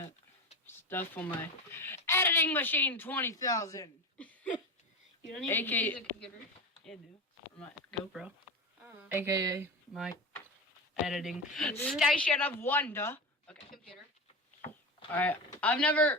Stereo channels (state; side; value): normal; both; correlation 0.23